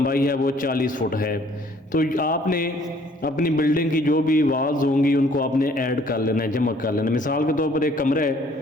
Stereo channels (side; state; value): both; normal; correlation 0.59